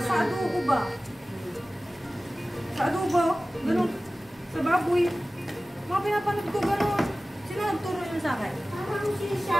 adobo ba? Sa adobo? Ganun. Sa baboy. Mga pinapanood ko ganun. Sino nagturo yun sa akin? Parang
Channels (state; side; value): noise; left; hum, 30 dB below the sound